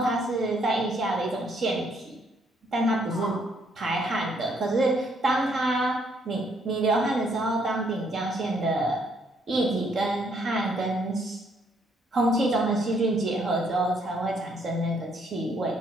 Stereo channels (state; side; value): normal; both; correlation 0.69